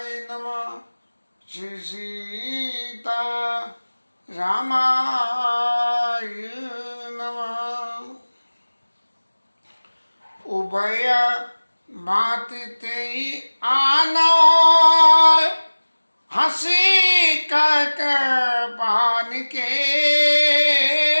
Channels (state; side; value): inverted; both; correlation -1.00